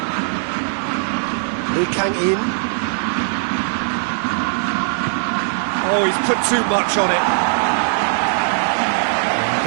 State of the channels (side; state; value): left; silent; digital silence